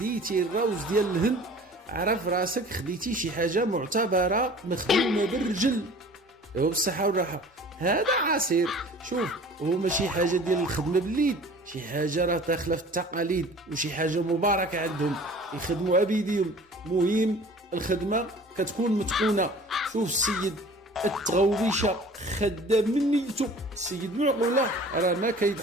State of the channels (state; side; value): normal; both; correlation 0.45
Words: الروز ديال الهند عرف راسك خديتي شي حاجه معتبره مخدومه بالرجل. ايوا بالصحه والراحه. هذا عصير، شوف هو ماشي حاجه ديال الخدمه باليد، شي حاجه راه داخله في التقاليد وشي حاجه مباركه عندهم، يخدموا بيديهم. مهم الخدمه كتكون متقونه. شوف السيد التغوبيشه خدام من نيته، السيد معقوله راه ما